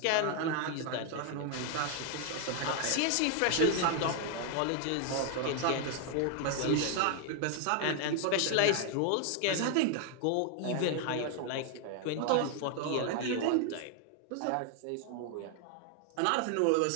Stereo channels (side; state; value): both; different; correlation 0.00